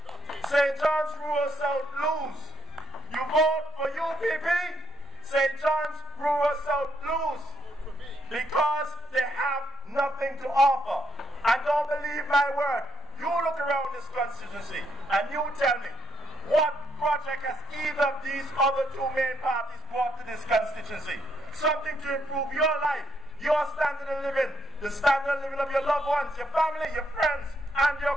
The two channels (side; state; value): both; normal; correlation 0.74